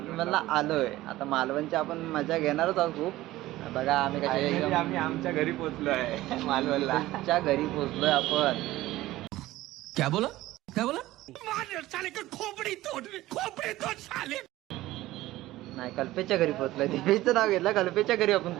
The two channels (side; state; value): left; quieter; 16.6 dB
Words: आलोय. आता मालवणची आपण मजा घेणारच आहोत खूप. बघा आम्ही कशा आम्ही आमच्या घरी पोहोचलो आहे मालवणला. आमच्या घरी पोहोचलोय आपण. क्या बोला नाही, कल्पेशच्या घरी पोहोचलोय. दीपेशचं नाव घेतलं, कल्पेशच्या घरी आपण